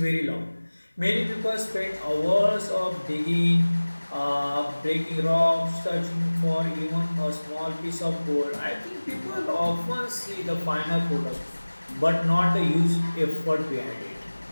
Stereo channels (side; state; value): both; inverted; correlation -1.00